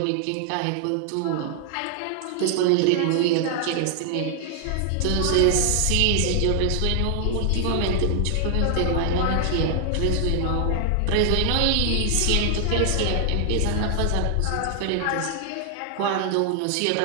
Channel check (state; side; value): different; both; correlation 0.00